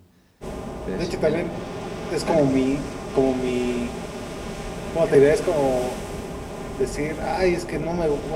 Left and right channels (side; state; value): both; identical; correlation 1.00